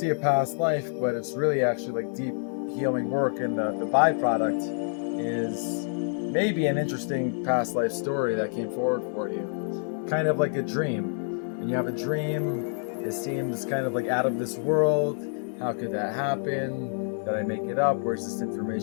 a past life, but it's really actually like deep healing work, and the byproduct is maybe an interesting past life story that came forward for you. Kind of like a dream. When you have a dream, it seems kind of like out of this world. How could that happen? Did I make it up? Where's this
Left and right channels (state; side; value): silent; right; 60 dB below the other